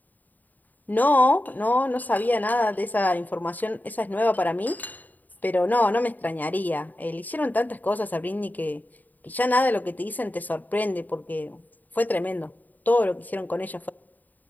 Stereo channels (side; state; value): right; late; 0.084 ms